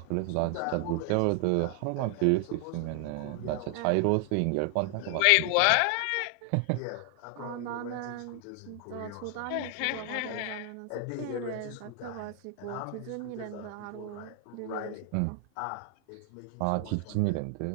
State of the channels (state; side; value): different; both; correlation 0.00